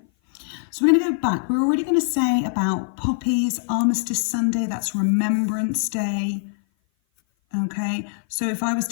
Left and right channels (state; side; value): silent; right; 57 dB below the other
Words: So we're going to go back. We're already going to say about Poppies, Armistice Sunday, that's Remembrance Day. Okay, so if I was